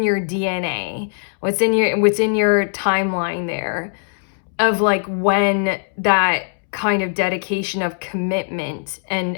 your DNA, what's in your timeline there of like when that kind of dedication of commitment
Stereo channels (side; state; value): right; silent; 66 dB below the other